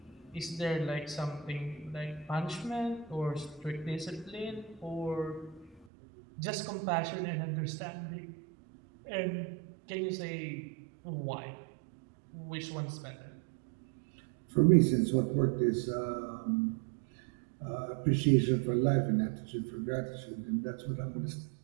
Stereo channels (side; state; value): left; drops out; at 5.9 s